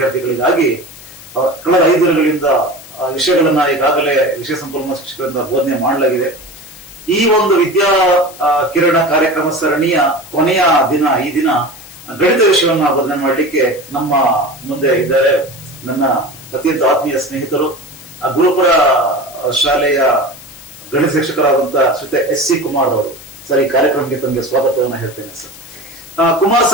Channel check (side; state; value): left; noise; hiss, 18 dB below the sound